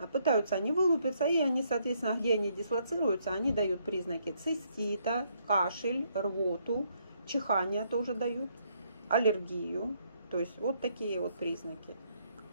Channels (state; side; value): inverted; both; correlation -0.71